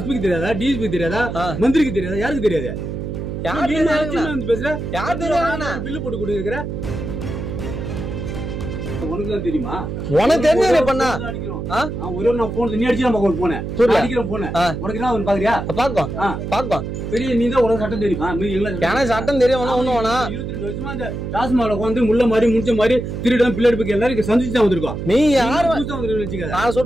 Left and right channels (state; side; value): noise; right; hum, 5 dB below the sound